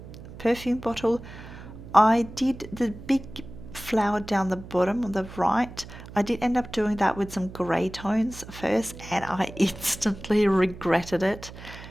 perfume bottle. I did the big flower down the bottom on the right. I did end up doing that with some grey tones first, and I instantly regretted it.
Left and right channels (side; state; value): right; noise; hum, 15 dB below the sound